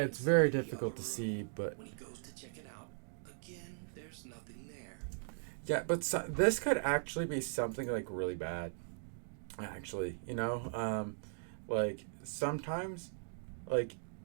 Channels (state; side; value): silent; left; digital silence